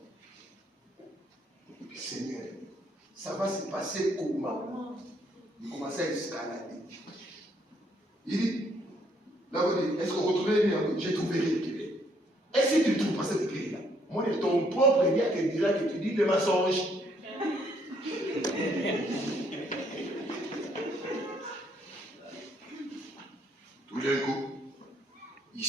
Seigneur ça va se passer comment il commence à escalader il dit là vous dites est-ce qu'on retrouve j'ai trouvé rien est-ce que tu trouves pas cette clé là moi ton propre dia qui dira que tu dis des mensonges. Tout d'un coup, il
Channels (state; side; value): normal; both; correlation 0.69